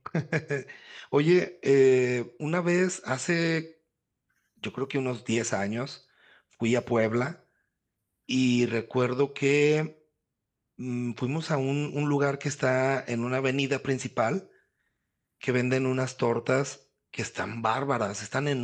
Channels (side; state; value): both; identical; correlation 1.00